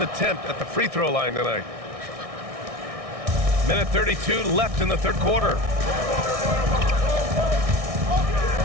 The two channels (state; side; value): late; left; 1.6 ms